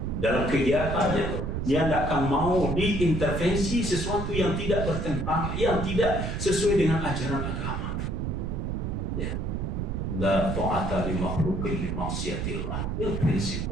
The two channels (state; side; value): noise; right; rumble, 2 dB below the sound